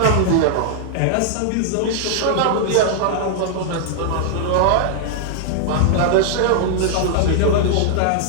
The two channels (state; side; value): different; both; correlation -0.01